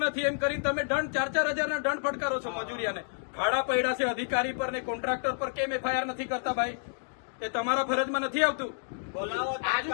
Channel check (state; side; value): silent; right; digital silence